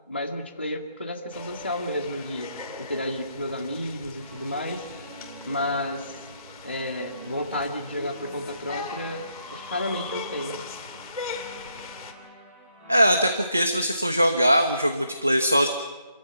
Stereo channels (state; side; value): inverted; both; correlation -0.76